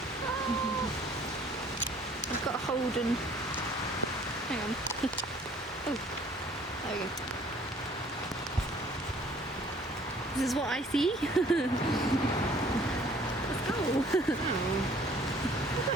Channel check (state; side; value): normal; both; correlation 0.56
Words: I've got a hold and... Hang on. Oh, there we go. This is what I see. Let's go.